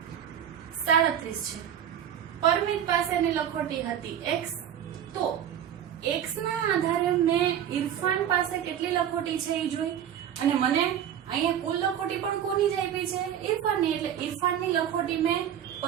37 છે, પરમિત પાસેની લખોટી હતી x. તો x ના આધારે મેં ઇરફાન પાસે કેટલી લખોટી છે એ જોઈ, અને મને અહીંયા કુલ લખોટી પણ કોની જ આપી છે? ઇરફાનની. એટલે ઇરફાનની લખોટી મેં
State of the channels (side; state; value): left; quieter; 9.8 dB